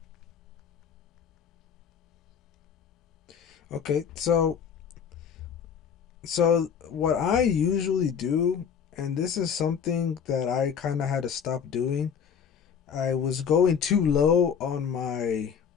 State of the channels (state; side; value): quieter; right; 7.3 dB